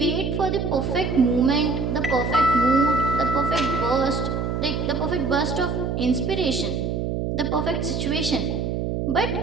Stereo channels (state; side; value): noise; right; hum, 1 dB below the sound